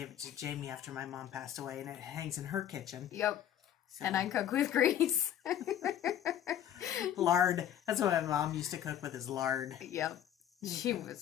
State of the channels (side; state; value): right; quieter; 10.6 dB